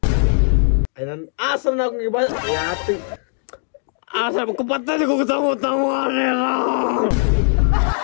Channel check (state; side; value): silent; right; digital silence